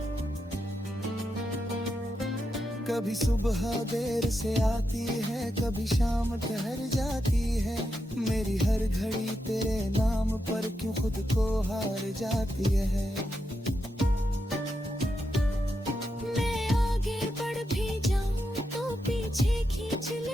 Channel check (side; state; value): both; normal; correlation 0.85